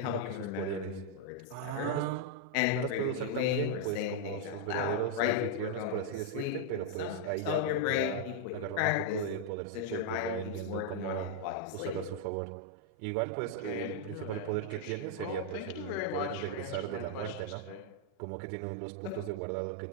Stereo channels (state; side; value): different; both; correlation -0.01